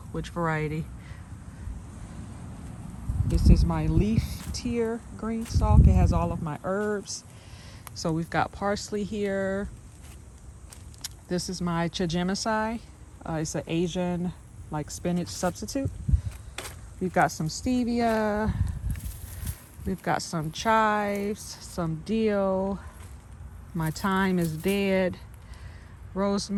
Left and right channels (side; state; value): both; identical; correlation 1.00